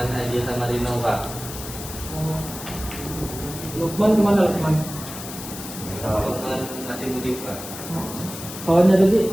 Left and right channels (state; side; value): noise; left; hiss, 11 dB below the sound